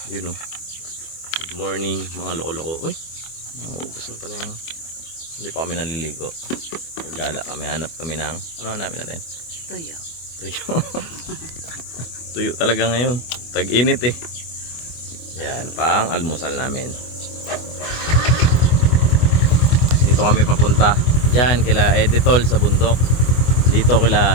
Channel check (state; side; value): late; right; 24 ms